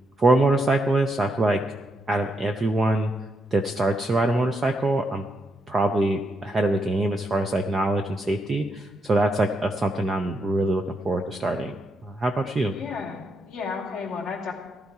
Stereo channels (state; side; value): normal; both; correlation 0.80